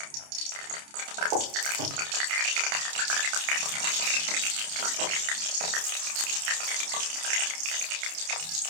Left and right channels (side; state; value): left; late; 29 ms